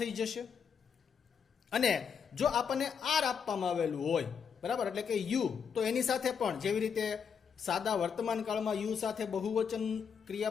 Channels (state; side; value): quieter; right; 6.8 dB